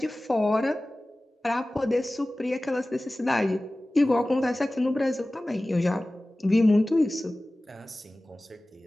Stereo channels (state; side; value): normal; both; correlation 0.97